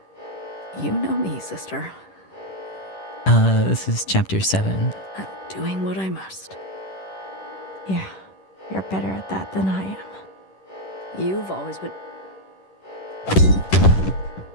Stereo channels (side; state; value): right; late; 10 ms